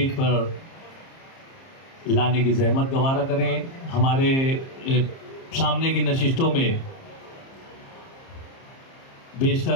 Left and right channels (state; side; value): late; right; 30 ms